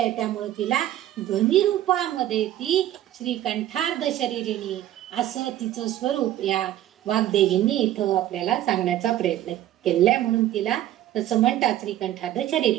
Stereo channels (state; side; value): quieter; left; 13.1 dB